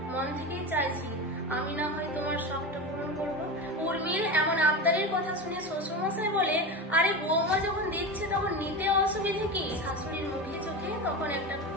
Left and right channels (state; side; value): normal; both; correlation 0.23